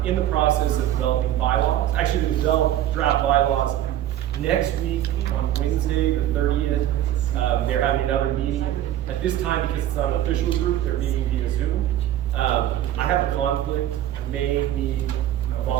in the process of developing bylaws. Actually, they develop draft bylaws next week on Wednesday, the 30th. They're having another meeting. At this time, because it's not an official group, they're meeting via Zoom. I have a conflict. I may need a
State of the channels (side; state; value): left; quieter; 12.3 dB